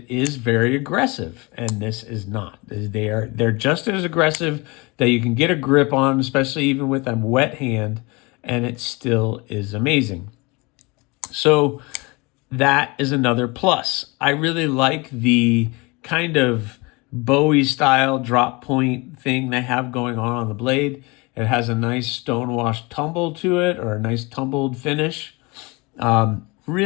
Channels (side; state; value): right; quieter; 26.2 dB